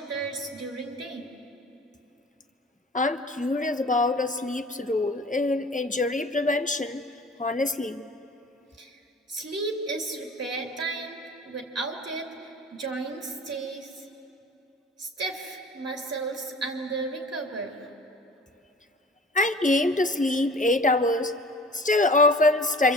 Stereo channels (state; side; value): normal; both; correlation 0.44